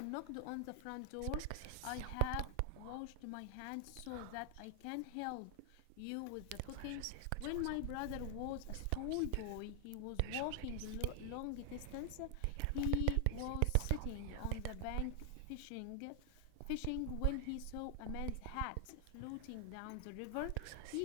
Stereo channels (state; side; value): different; both; correlation 0.00